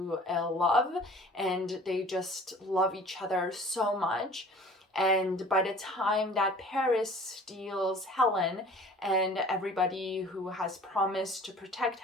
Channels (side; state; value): both; normal; correlation 0.47